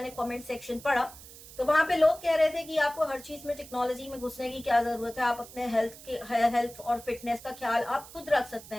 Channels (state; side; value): noise; right; hiss, 17 dB below the sound